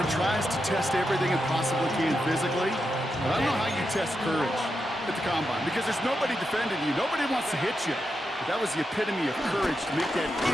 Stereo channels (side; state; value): both; normal; correlation 0.86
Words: tries to test everything it possibly can physically, but I don't know how you test courage at the Combine because there's nobody defending you. Nobody wants to hit you. But that was the epitome of courage to make that